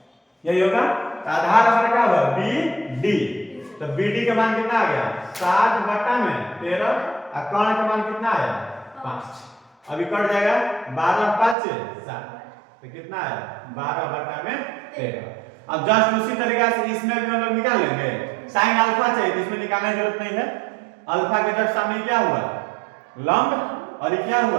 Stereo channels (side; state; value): left; drops out; at 11.6 s